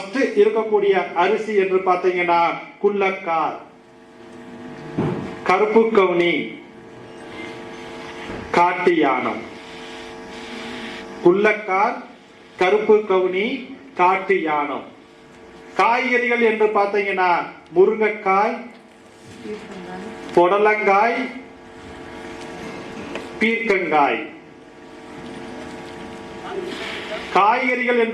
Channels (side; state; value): both; identical; correlation 1.00